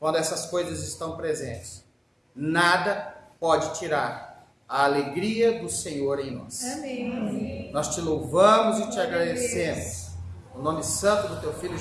essas coisas estão presentes, nada pode tirar a alegria do Senhor em nós. Amém. Nós te louvamos e te agradecemos. No nome santo do teu Filho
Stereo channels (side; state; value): both; identical; correlation 1.00